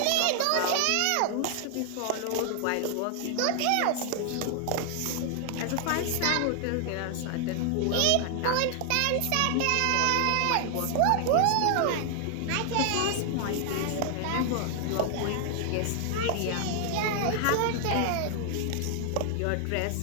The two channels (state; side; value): different; both; correlation 0.00